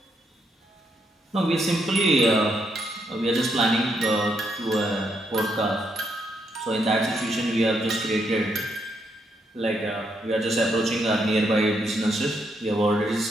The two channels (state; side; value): normal; both; correlation 0.77